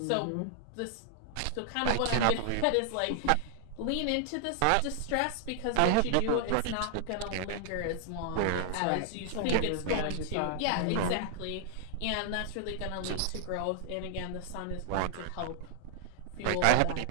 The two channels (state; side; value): different; both; correlation 0.00